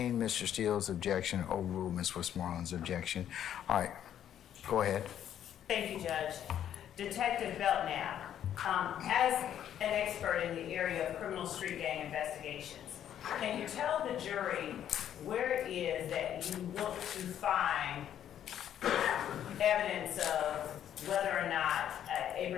Mr. Steele's objection, overruled Ms. Westmoreland's objection. All right, go ahead. Thank you, Judge. Detective Belknap, as an expert in the area of criminal street gang investigations, can you tell the jury where it is that you look to find evidence of whether or not a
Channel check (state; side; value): quieter; right; 10.3 dB